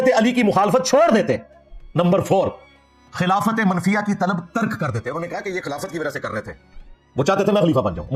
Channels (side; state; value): both; identical; correlation 1.00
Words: अली की मुखालफत छोड़ देते। नंबर 4, खिलाफत मनफिया की तलब तर्क कर देते। उन्होंने कहा कि ये खिलाफत की वजह से कर रहे थे, वो चाहते थे मैं खलीफा बन जाऊं,